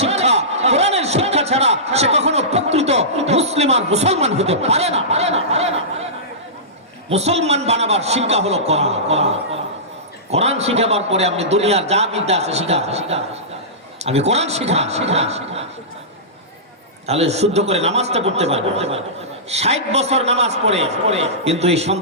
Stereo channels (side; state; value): both; normal; correlation -0.19